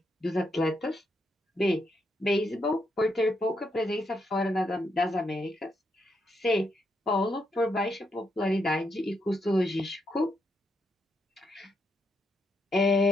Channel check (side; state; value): both; normal; correlation 0.79